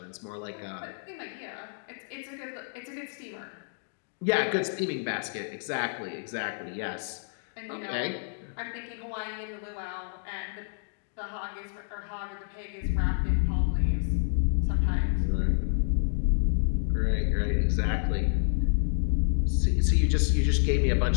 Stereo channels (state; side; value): silent; right; digital silence